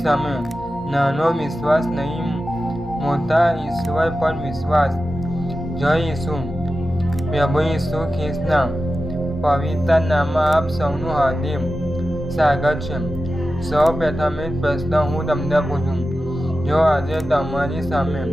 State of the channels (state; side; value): normal; both; correlation 0.93